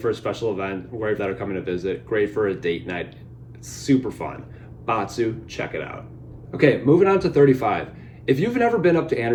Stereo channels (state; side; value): identical; both; correlation 1.00